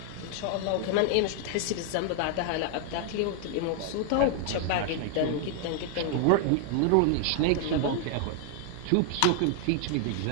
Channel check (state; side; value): different; both; correlation 0.00